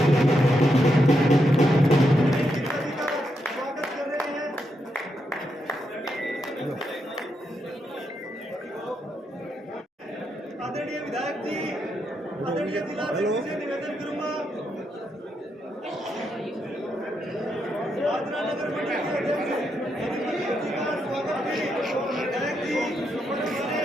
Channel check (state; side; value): normal; both; correlation 0.82